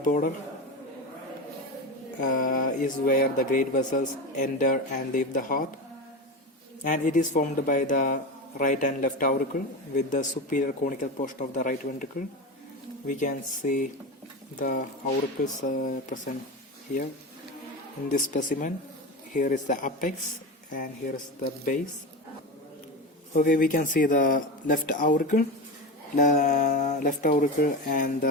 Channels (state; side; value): normal; both; correlation 0.22